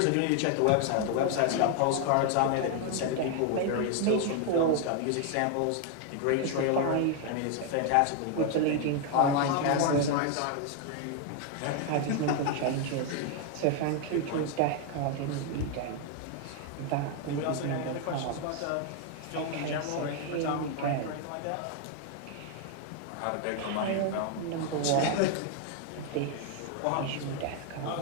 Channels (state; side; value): different; both; correlation 0.01